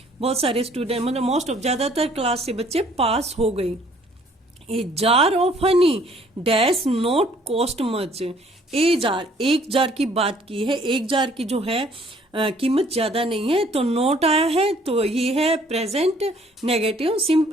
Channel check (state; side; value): normal; both; correlation 0.59